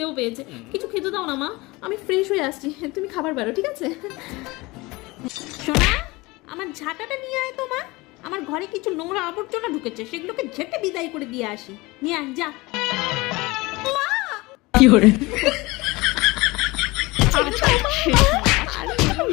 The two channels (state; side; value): quieter; right; 22.6 dB